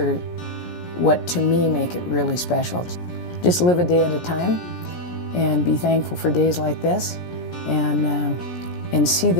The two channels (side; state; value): right; late; 17 ms